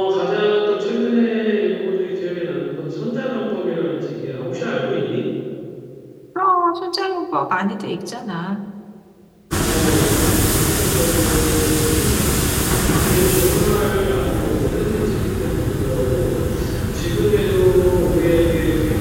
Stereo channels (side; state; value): both; identical; correlation 1.00